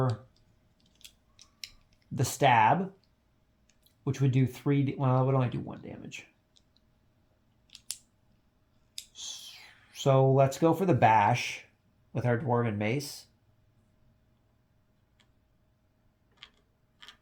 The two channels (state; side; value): identical; both; correlation 1.00